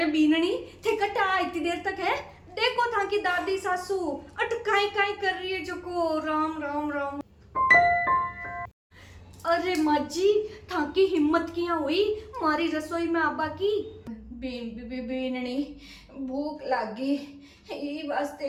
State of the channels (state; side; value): identical; both; correlation 1.00